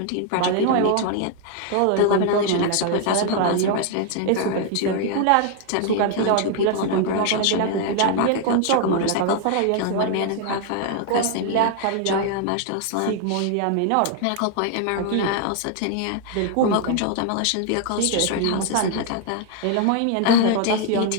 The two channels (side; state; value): both; different; correlation 0.00